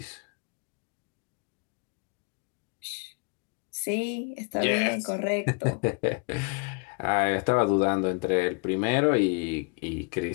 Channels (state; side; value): quieter; right; 34.4 dB